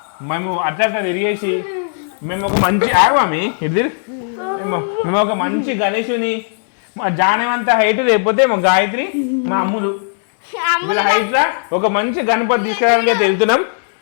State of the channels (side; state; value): right; silent; digital silence